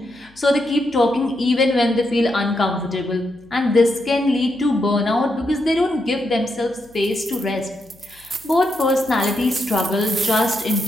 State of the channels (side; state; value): left; noise; hum, 29 dB below the sound